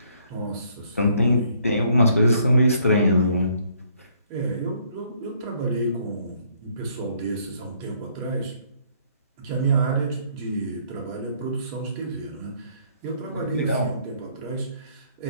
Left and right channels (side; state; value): both; inverted; correlation -0.65